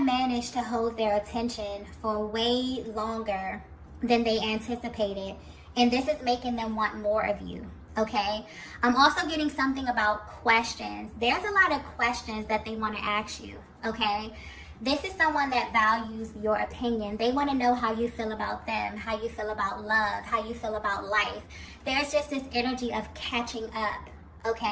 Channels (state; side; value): identical; both; correlation 1.00